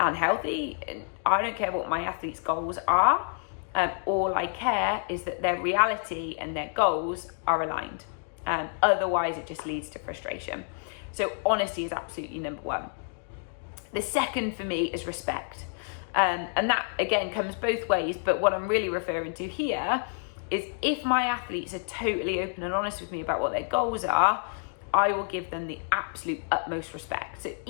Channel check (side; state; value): right; silent; 59 dB below the other